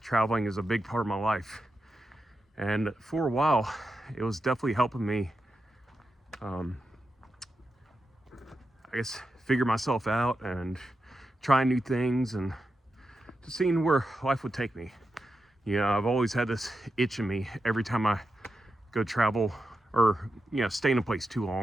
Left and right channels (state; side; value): normal; both; correlation 0.89